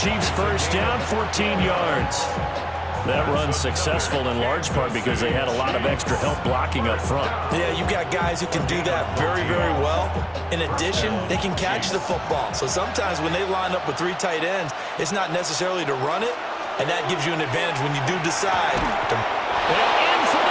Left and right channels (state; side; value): identical; both; correlation 1.00